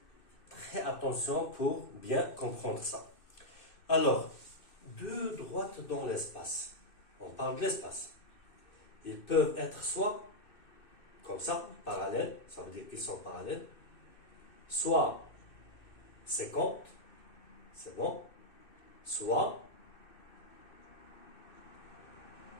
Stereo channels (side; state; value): right; late; 2.6 ms